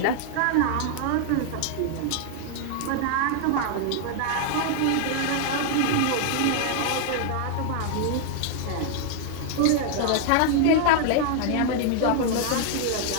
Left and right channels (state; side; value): different; both; correlation 0.00